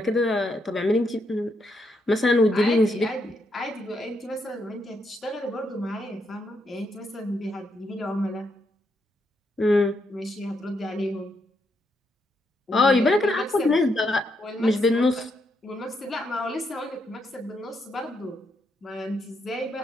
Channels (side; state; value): both; normal; correlation 0.79